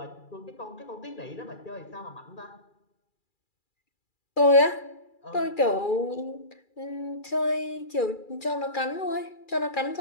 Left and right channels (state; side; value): late; right; 2.4 ms